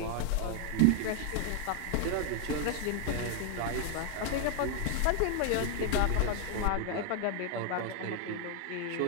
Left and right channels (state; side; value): different; both; correlation 0.00